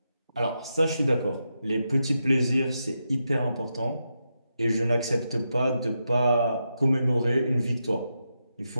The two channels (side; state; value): both; inverted; correlation -0.86